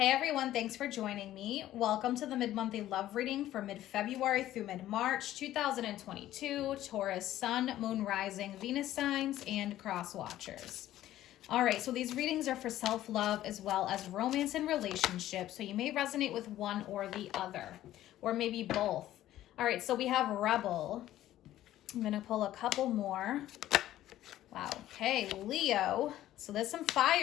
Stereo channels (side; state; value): right; quieter; 13.6 dB